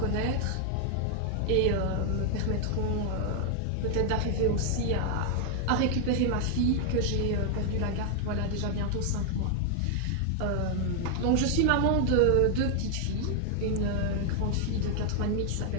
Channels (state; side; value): different; both; correlation 0.00